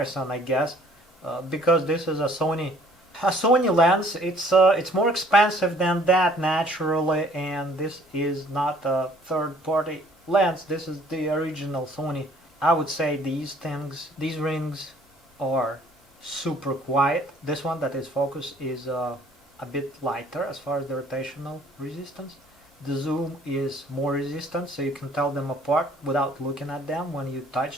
I guess, because this is a Sony lens. It's more expensive than that naturally, and this is not a third-party lens. This is the original Sony. I would say these rings are super quiet. This one that is focused is a bit lighter as far as the rotational resistance. The zoom is more resistant, so you can tell them apart without looking at them when you touch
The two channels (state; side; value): normal; both; correlation 0.58